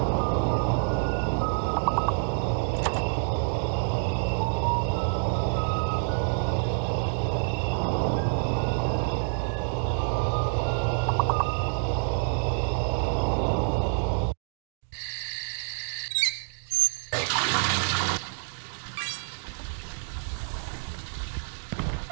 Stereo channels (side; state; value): left; silent; digital silence